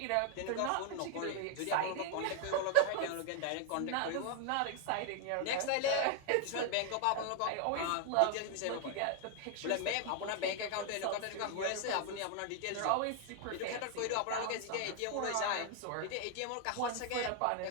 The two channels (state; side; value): different; both; correlation 0.00